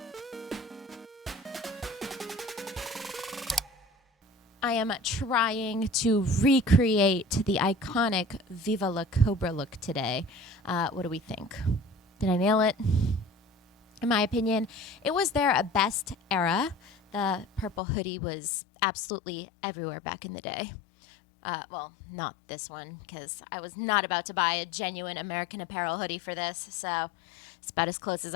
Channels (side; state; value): right; drops out; at 17.8 s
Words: I am trying to recreate the iconic Viva La Cobra look today. What do we think? Did I nail it? In my opinion, it was their best era. The purple hoodie was absolutely everywhere back in the day. Well, not this one, because I was not about to buy a genuine American Apparel hoodie for this, so it's about as close as